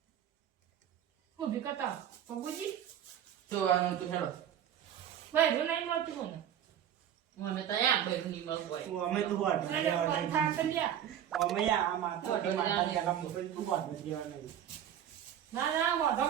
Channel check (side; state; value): left; quieter; 10.0 dB